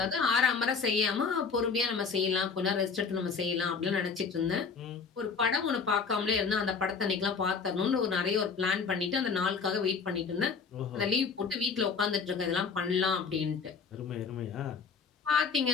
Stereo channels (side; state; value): right; quieter; 5.4 dB